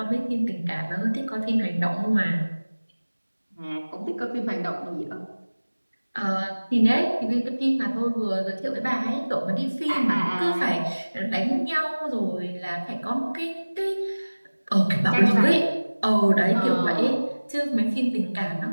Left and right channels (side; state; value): both; inverted; correlation -1.00